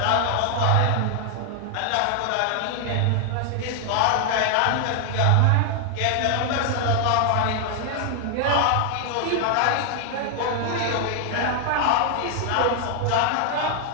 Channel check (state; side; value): different; both; correlation 0.00